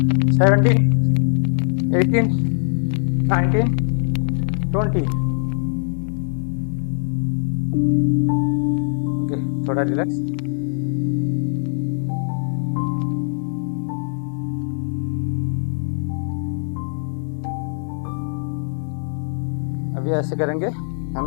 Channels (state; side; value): silent; right; digital silence